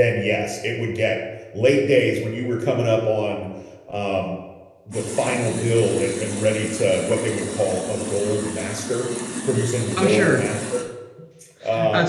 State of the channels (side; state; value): both; identical; correlation 1.00